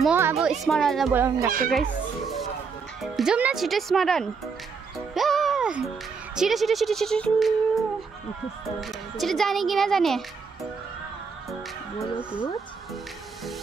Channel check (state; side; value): quieter; left; 5.4 dB